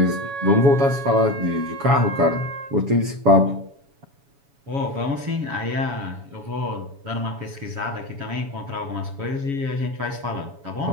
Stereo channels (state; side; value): late; left; 7.1 ms